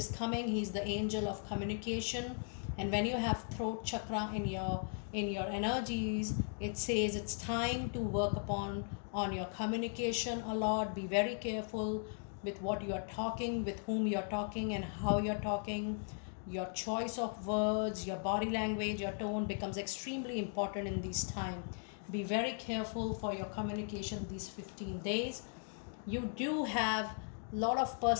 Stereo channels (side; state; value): right; silent; 53 dB below the other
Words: coming, he's the angel of communication. And when you have throat chakra in your energies, it says it's time to work on your communication a lot. Be very careful with what you are talking, with whom you are talking and how you're talking. Your choice of words, your body language, your tone becomes extremely important in this time. Be very careful for your communication these 15 days. You do have a lot of